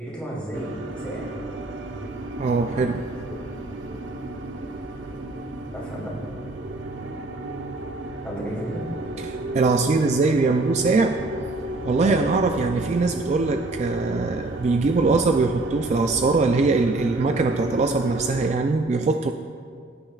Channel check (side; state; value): left; quieter; 3.1 dB